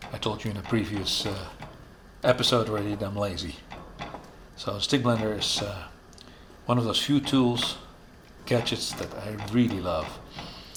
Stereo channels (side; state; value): both; identical; correlation 1.00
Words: I told you in a previous episode already that I'm lazy. So a stick blender is one of those few tools, gadgets that I really love.